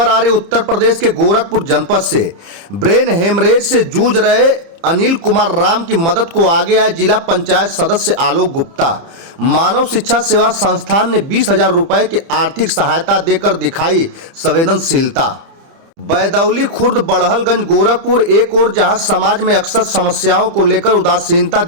आ रही उत्तर प्रदेश के गोरखपुर जनपद से। ब्रेन हेमरेज से जूझ रहे अनिल कुमार राम की मदद को आगे आए जिला पंचायत सदस्य आलोक गुप्ता। मानव शिक्षा सेवा संस्थान ने 20,000 रुपए की आर्थिक सहायता देकर दिखाई संवेदनशीलता। बैदौली खुर्द बड़हलगंज गोरखपुर एक और जहां समाज में अक्सर समस्याओं को लेकर उदासीनता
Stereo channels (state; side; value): late; left; 30 ms